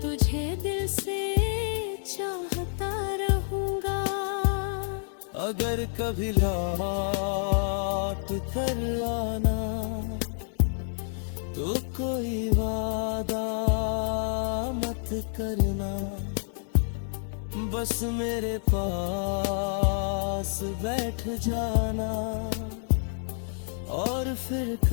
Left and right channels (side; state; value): right; silent; digital silence